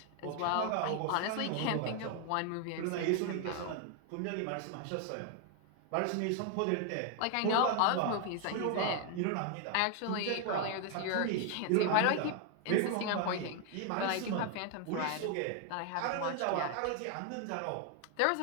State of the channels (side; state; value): both; different; correlation 0.00